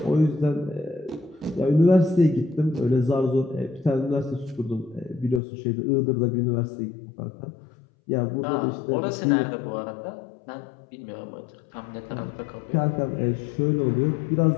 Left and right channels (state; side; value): drops out; right; at 5.4 s